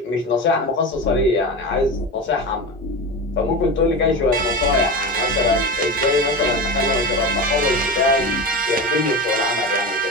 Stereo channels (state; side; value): normal; both; correlation 0.24